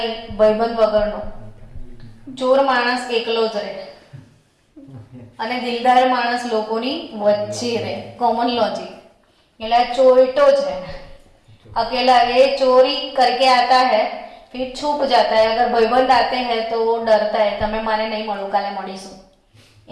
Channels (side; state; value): both; identical; correlation 1.00